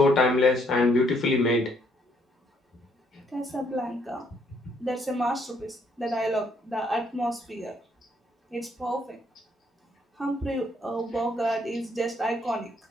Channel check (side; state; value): both; normal; correlation 0.69